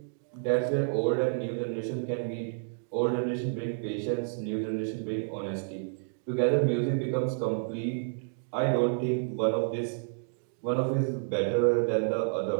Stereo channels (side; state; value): left; silent; digital silence